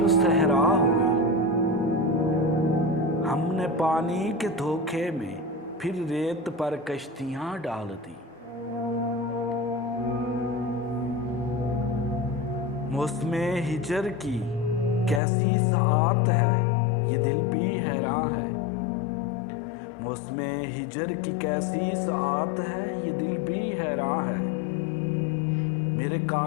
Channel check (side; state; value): right; drops out; at 15.2 s